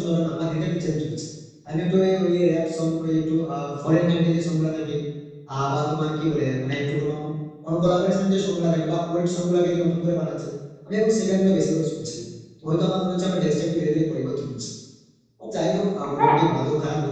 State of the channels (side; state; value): both; identical; correlation 1.00